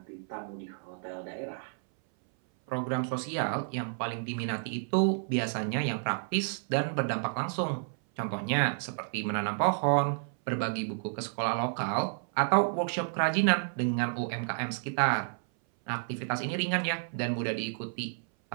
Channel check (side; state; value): left; silent; 57 dB below the other